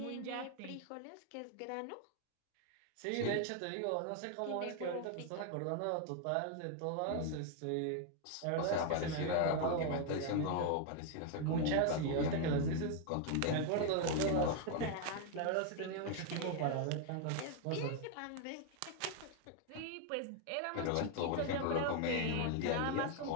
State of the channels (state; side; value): different; both; correlation 0.01